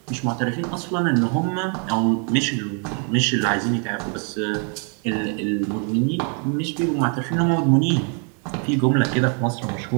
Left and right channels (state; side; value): quieter; left; 39.1 dB